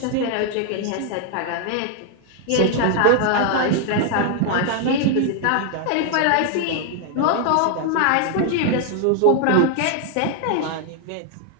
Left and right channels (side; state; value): both; different; correlation 0.00